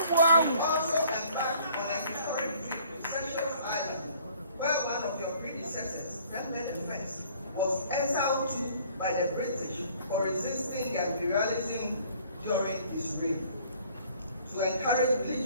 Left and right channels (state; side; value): inverted; both; correlation -0.57